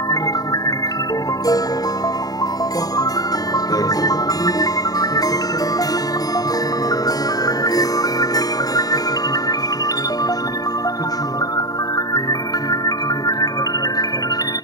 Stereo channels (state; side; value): late; right; 0.18 ms